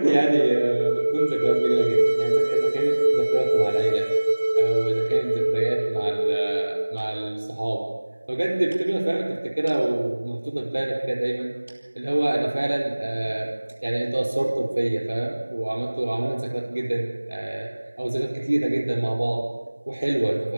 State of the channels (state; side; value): inverted; both; correlation -1.00